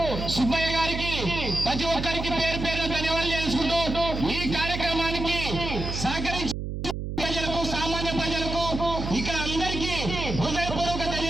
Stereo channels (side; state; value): right; noise; hum, 5 dB below the sound